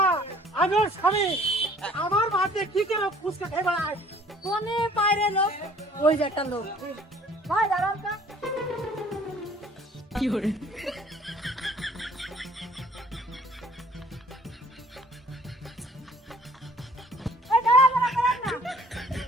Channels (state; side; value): normal; both; correlation 0.56